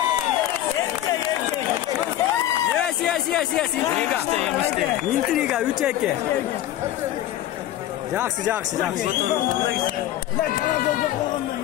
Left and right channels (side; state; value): right; quieter; 13.0 dB